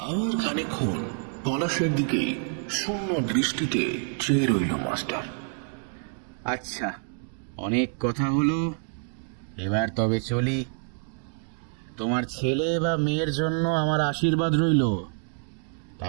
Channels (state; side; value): silent; left; 56 dB below the other